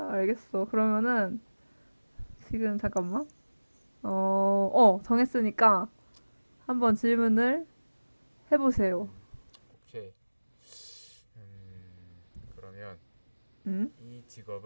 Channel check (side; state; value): both; inverted; correlation -1.00